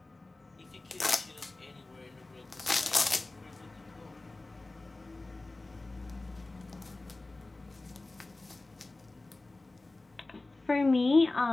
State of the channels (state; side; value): quieter; right; 3.1 dB